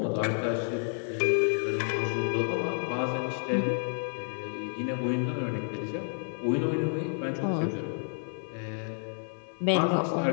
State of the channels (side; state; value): right; silent; 58 dB below the other